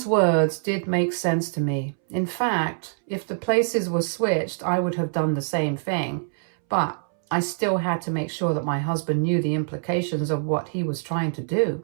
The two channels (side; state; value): left; silent; 62 dB below the other